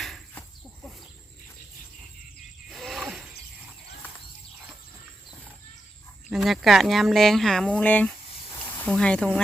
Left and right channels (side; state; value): both; normal; correlation 0.88